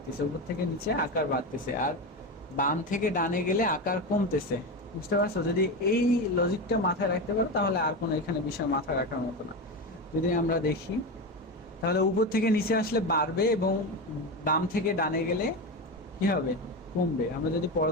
উপর থেকে নিচে আকার বাড়তেছে। আর বাম থেকে ডানে গেলে আকার কমতেছে। বুঝতে পারছো? যদি এই লজিকটা মাথায় রাখতে পারো তাহলে আর কোনো এখানে বিষয় মাথায় রাখার মতো না। যদি আমরা দেখি, তাহলে উপর থেকে নিচে আসলে বাড়বে এবং বাম থেকে ডানে গেলে কি হবে? কমবে। আমরা যদি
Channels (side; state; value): both; normal; correlation 0.18